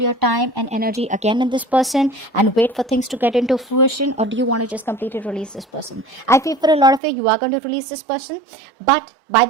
time and energy again in this person and wait for things to get into fruition, or do you want to just completely release this person? I feel for a lot of you are going to release this person, but by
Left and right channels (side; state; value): left; drops out; at 7.0 s